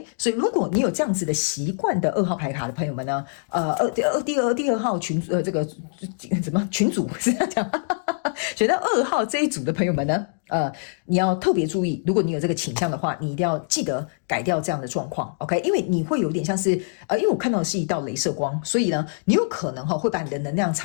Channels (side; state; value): right; silent; digital silence